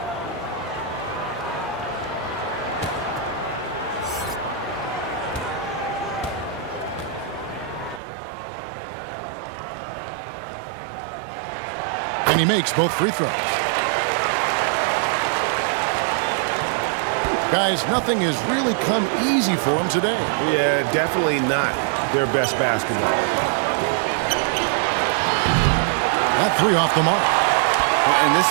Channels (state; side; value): drops out; left; at 8.0 s